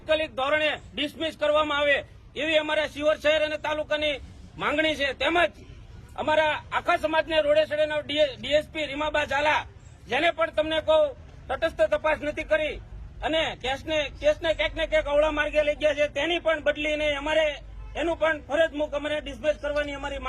ધોરણે ડિસમિસ કરવામાં આવે એવી અમારા શિહોર શહેર અને તાલુકાની માંગણી છે. તેમજ અમારા આખા સમાજને રોડે સડેના DSP રીમાબા ઝાલા, જેને પણ તમને કહું તટસ્થ તપાસ નથી કરી અને કેસને ક્યાંક ને ક્યાંક અવળા માર્ગે લઈ ગયા છે, તેની પણ બદલીને અમારે એનું પણ ફરજ મૂક અમારે ડિસમિસ કરવાની અમારી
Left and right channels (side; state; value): both; identical; correlation 1.00